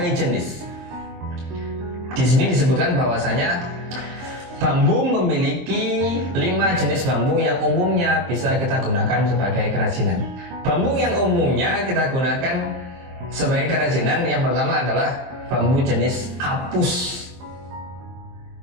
jenis. Di sini disebutkan bahwasanya bambu memiliki 5 jenis bambu yang umumnya bisa kita gunakan sebagai kerajinan. Bambu yang umumnya kita gunakan sebagai kerajinan yang pertama adalah bambu jenis apus.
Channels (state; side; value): late; left; 23 ms